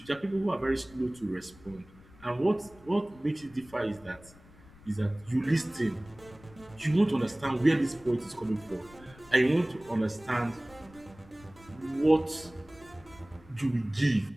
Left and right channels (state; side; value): noise; left; rumble, 23 dB below the sound